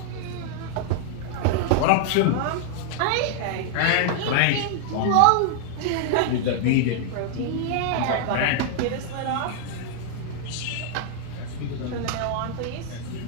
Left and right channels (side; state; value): both; different; correlation 0.00